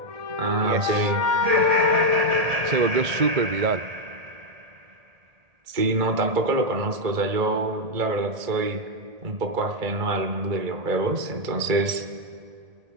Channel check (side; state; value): left; late; 1.8 ms